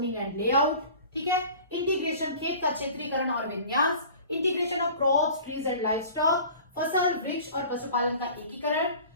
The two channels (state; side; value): inverted; both; correlation -0.43